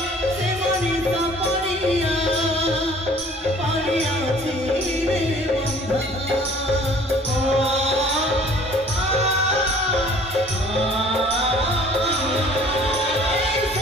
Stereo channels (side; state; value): both; normal; correlation 0.53